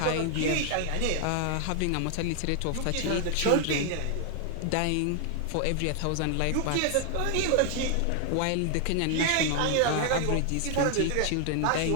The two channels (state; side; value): different; both; correlation 0.00